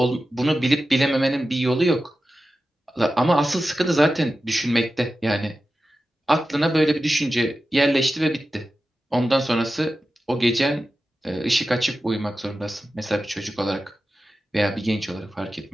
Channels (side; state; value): both; normal; correlation 0.93